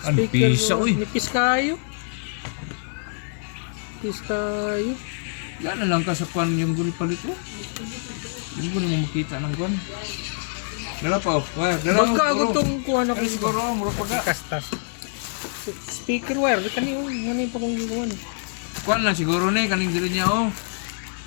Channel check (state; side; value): silent; right; 62 dB below the other